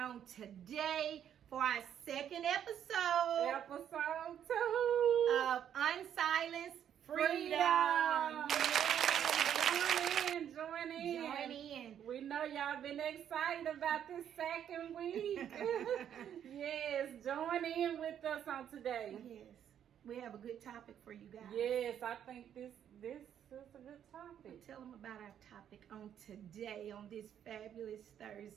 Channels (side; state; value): left; quieter; 9.5 dB